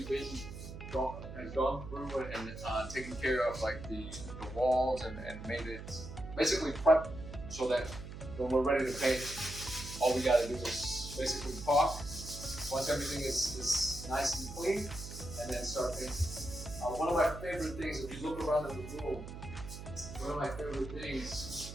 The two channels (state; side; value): noise; right; hum, 10 dB below the sound